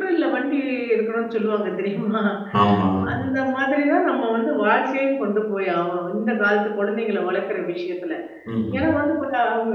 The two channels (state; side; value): identical; both; correlation 1.00